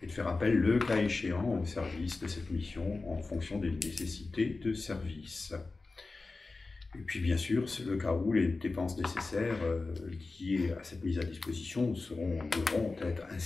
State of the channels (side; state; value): right; quieter; 3.6 dB